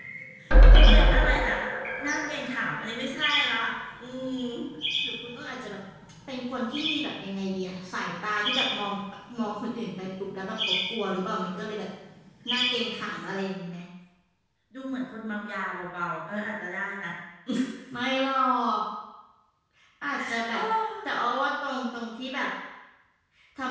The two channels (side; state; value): both; identical; correlation 1.00